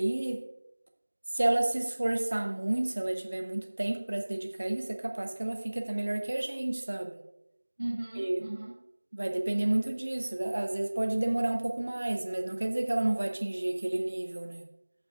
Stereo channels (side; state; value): both; inverted; correlation -1.00